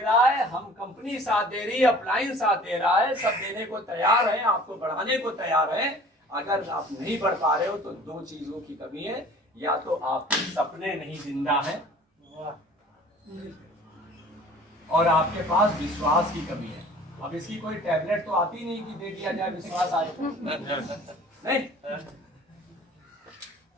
है, हम कंपनी साथ दे रही है, अप्लायंस साथ दे रहा है, सब देने को तैयार है, आपको बढ़ाने को तैयार है। अगर आप नहीं बढ़ पा रहे हो तो 2 चीजों की कमी है, या तो आपके सपने नहीं जिंदा है, और आपके पास विश्वास की कमी है। अब इसकी कोई टैबलेट तो आती नहीं कि दे दिया जाए विश्वास आए, नहीं,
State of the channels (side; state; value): both; normal; correlation 0.47